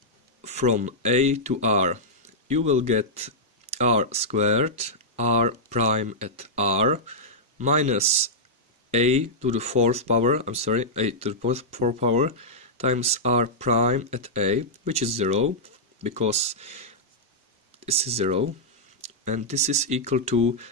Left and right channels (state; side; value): normal; both; correlation -0.09